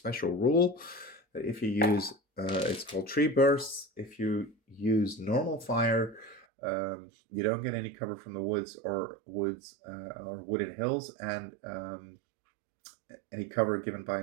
rule that if you use, it's called tree bursts. If you use normal fire, you don't get any cover from the woods or wooded hills, and any cover given by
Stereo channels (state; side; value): drops out; left; at 6.5 s